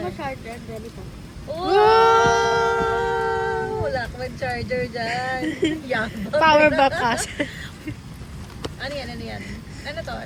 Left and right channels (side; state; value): both; identical; correlation 1.00